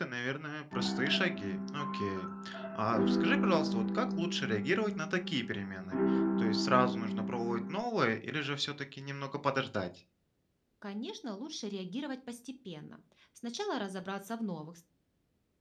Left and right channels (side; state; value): both; identical; correlation 1.00